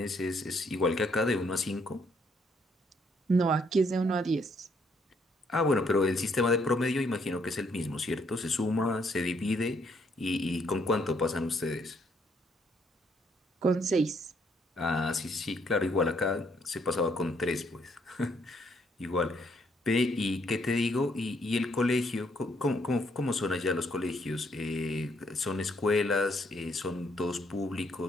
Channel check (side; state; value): both; normal; correlation 0.70